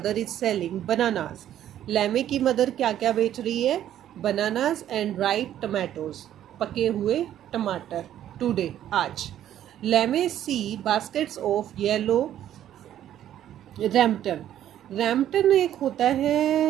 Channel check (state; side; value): quieter; left; 11.4 dB